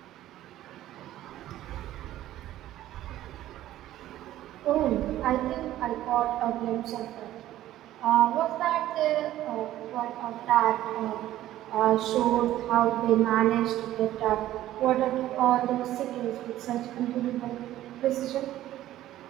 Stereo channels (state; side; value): quieter; left; 13.8 dB